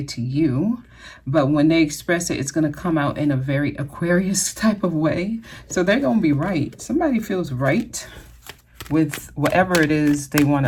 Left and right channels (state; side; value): identical; both; correlation 1.00